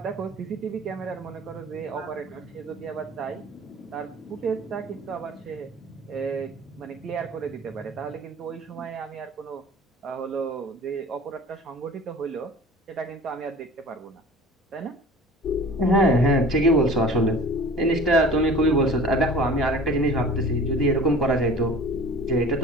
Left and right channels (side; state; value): both; normal; correlation 0.43